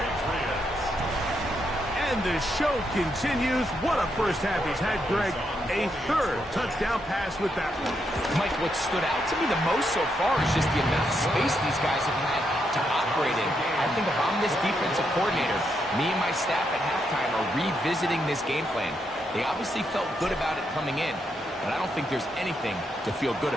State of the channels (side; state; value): both; normal; correlation 0.80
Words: And the show continues. What a first half he's had, Greg. A 3rd touchdown pass with that one. Mike, what stood out to me the most so far is just the amount of space these guys have had to operate in. I think if I'm this defensive coordinator, me and my staff at halftime are revisiting this game plan. They obviously felt good about it coming in, but I don't think there's anything to feel good